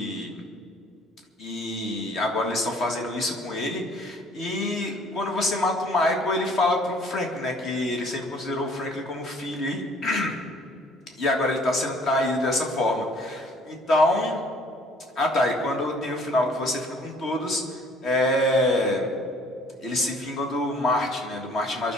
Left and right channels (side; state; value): both; normal; correlation 0.56